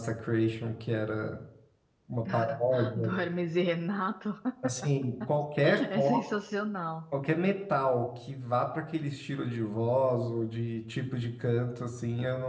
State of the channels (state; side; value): identical; both; correlation 1.00